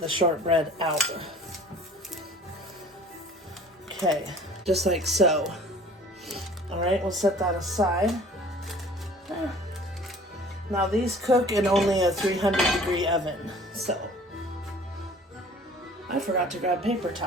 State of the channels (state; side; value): normal; both; correlation 0.48